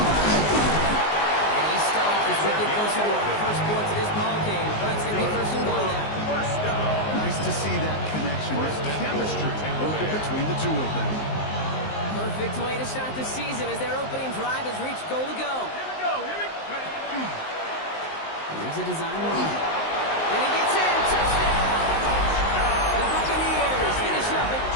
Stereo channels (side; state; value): right; late; 19 ms